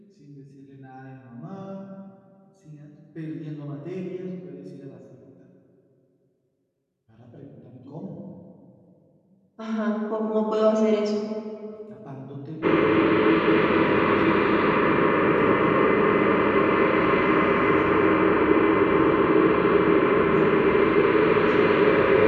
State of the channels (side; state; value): both; identical; correlation 1.00